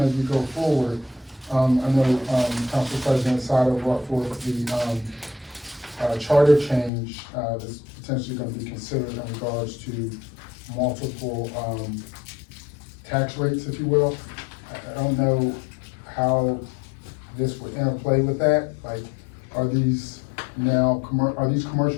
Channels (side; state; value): right; drops out; at 6.9 s